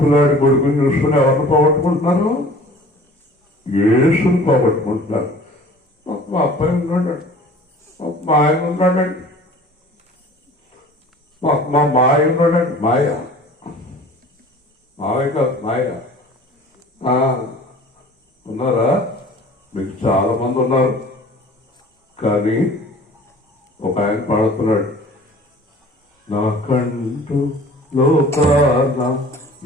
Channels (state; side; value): normal; both; correlation 0.46